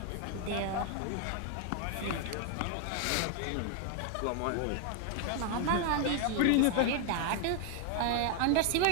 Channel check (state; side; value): different; both; correlation 0.00